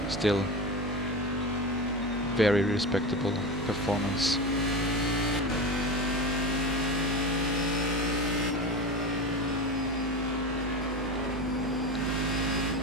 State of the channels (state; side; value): normal; both; correlation 0.24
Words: still very respectable performance.